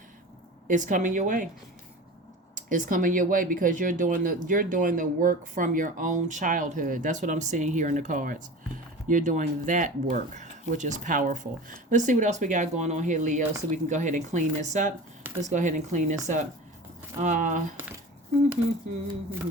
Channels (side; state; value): both; normal; correlation 0.35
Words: it's coming your way. It's coming your way because you're doing the work from your own childhood. That's what I'm seeing here in the cards. You're doing that work, which is powerful. Let's see what else we got going on here, Leo, so we can go ahead and clean this up. Let's go ahead and clean this up. Uh,